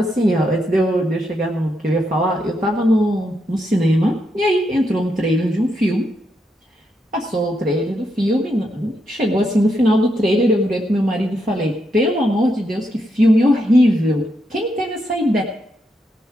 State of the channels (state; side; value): normal; both; correlation 0.81